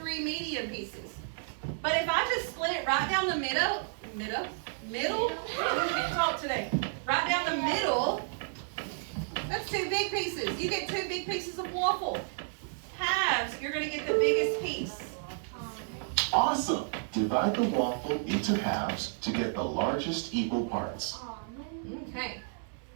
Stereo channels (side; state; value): left; silent; 57 dB below the other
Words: medium pieces. But if I just split it right down the middle? I can't talk today. Right down the middle, that's 2 big pieces. You get 2 big pieces of waffle. Halves, you're going to get the biggest piece. Awesome! Divide the waffle into halves to get the largest equal parts. Okay.